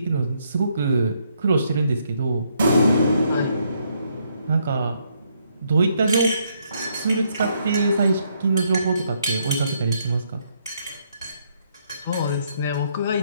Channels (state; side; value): inverted; both; correlation -0.73